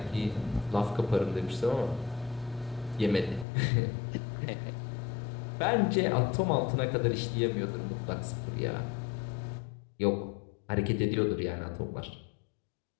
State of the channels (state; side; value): drops out; right; at 3.5 s